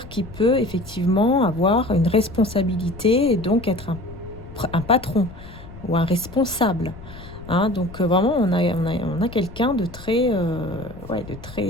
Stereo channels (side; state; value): left; noise; rumble, 16 dB below the sound